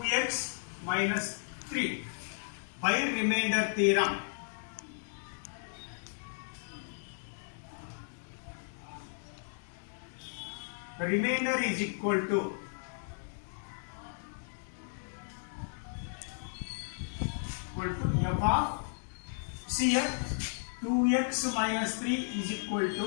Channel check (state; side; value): silent; right; digital silence